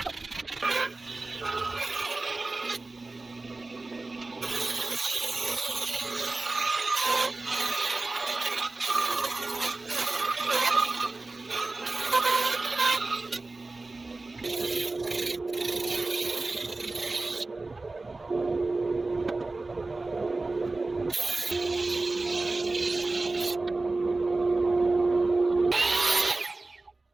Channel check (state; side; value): quieter; left; 3.3 dB